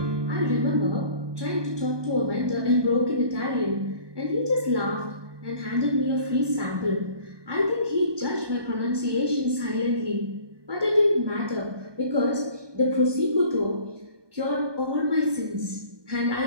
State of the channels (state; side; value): late; left; 1.2 ms